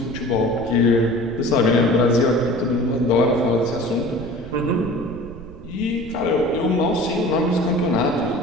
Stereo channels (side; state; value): right; noise; rumble, 16 dB below the sound